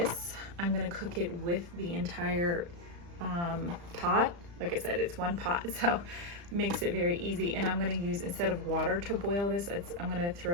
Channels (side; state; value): left; late; 35 ms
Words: I'm gonna cook it with the entire pot. Like I said, it's one pot, so it makes it very easy. And I'm gonna use, instead of water to boil this, I'm gonna